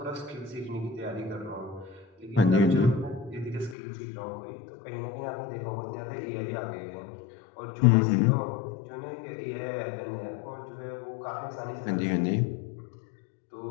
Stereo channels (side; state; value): right; drops out; at 3.8 s